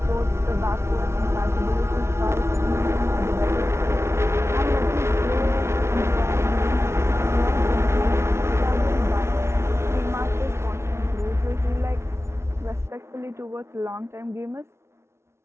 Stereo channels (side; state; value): left; late; 0.13 ms